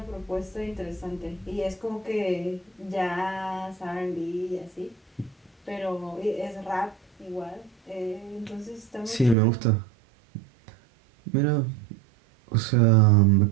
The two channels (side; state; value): left; drops out; at 9.3 s